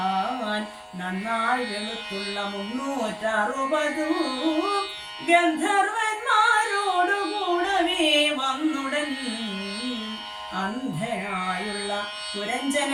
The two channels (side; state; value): both; identical; correlation 1.00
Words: നന്നായി വെളുത്തുള്ള 360 ഗന്ധർവന്മാരോടുകൂടവേ വന്നുടൻ അന്ധനായുള്ള